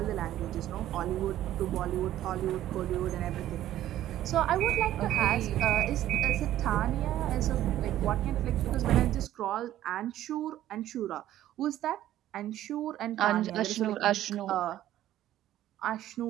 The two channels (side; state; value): left; quieter; 13.0 dB